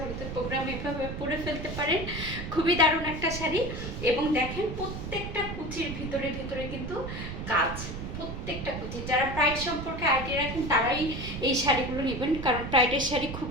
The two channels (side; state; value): right; noise; rumble, 7 dB below the sound